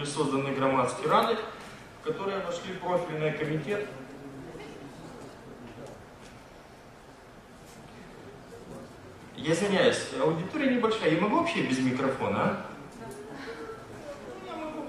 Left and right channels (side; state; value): both; identical; correlation 1.00